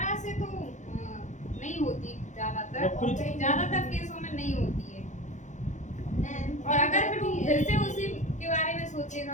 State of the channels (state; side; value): late; right; 0.35 ms